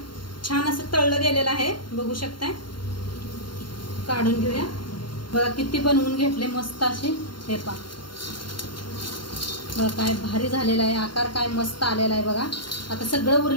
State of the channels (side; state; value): right; late; 0.72 ms